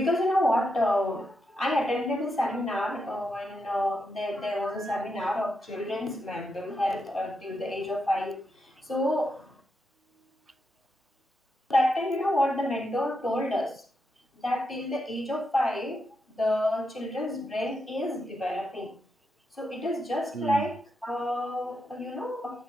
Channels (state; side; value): normal; both; correlation 0.84